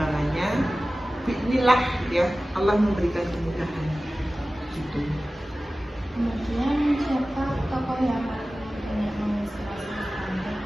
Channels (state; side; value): normal; both; correlation 0.96